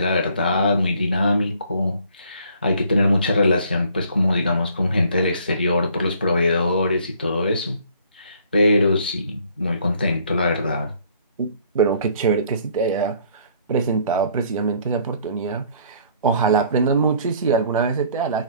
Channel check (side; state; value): both; inverted; correlation -0.59